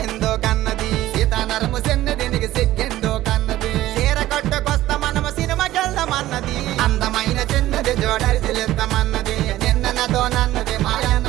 కన్నది సీతానరము చిన్నది నీకు సిగ్గెందో కన్నది చీర కట్టుకొస్తా మనము సినిమాకెళ్దామన్నది అందమైన చిన్నది జోడరిసిలెత్తమన్నది నిన్న నాతో నన్నది మాయన్న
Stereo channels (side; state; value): left; quieter; 15.2 dB